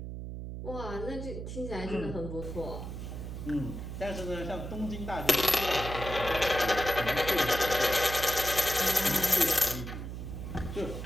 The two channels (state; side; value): noise; right; hum, 7 dB below the sound